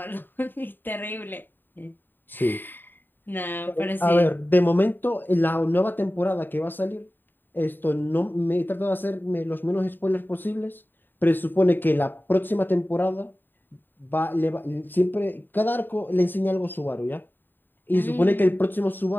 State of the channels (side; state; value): right; late; 0.093 ms